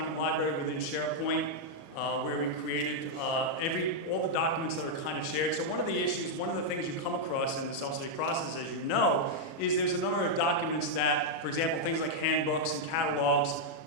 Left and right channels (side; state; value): right; late; 37 ms